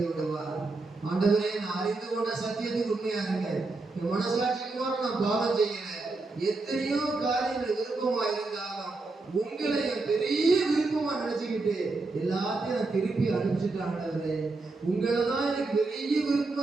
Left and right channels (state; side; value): quieter; left; 3.5 dB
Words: விடுவார். ஆண்டவரே, நான் அறிந்து கொண்ட சத்தியத்துக்கு உண்மையா இருக்கேன், என் மனசாட்சிக்கு நான் பாவம் செய்யல, எத்தனையோ காரியங்கள் விருப்பமா இருந்தாலும் உங்களை என் பெரிய விருப்பமா நினைச்சுக்கிட்டு எல்லாத்தையும் நான் திருப்பி அனுப்பிச்சுட்டேன். ஆண்டவரே, உங்களை தான் எனக்கு பெரிய